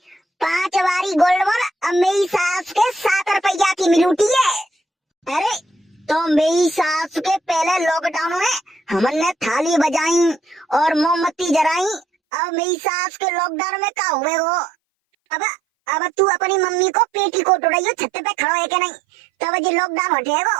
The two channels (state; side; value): drops out; left; at 12.1 s